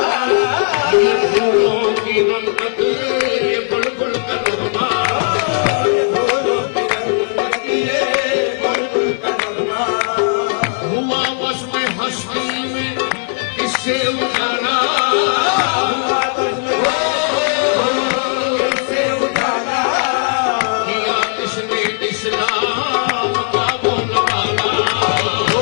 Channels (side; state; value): right; silent; 59 dB below the other